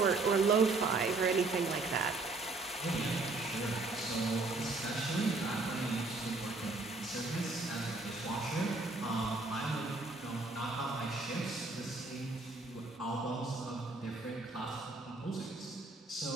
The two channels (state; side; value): quieter; left; 3.5 dB